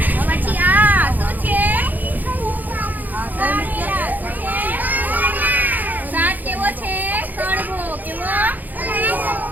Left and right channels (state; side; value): late; left; 0.084 ms